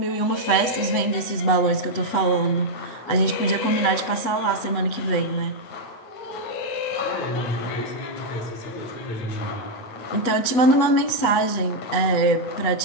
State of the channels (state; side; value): late; right; 8.3 ms